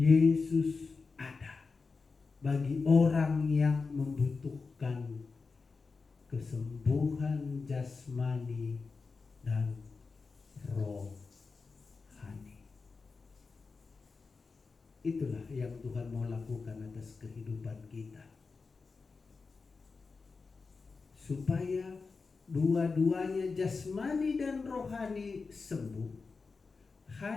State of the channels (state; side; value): quieter; right; 4.5 dB